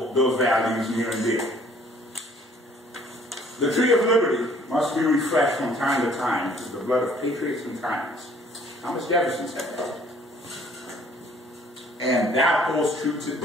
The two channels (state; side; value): normal; both; correlation 0.58